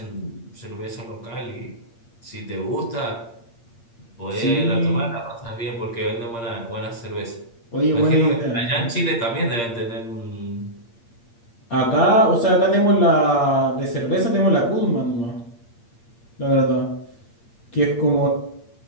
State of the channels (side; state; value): right; late; 8.6 ms